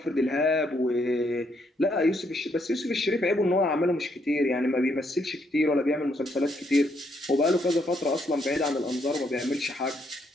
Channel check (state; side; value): normal; both; correlation 0.73